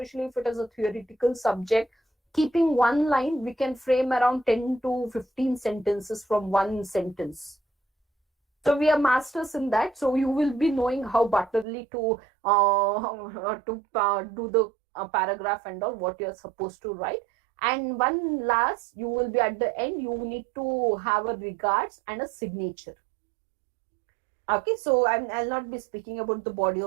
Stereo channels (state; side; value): drops out; left; at 11.7 s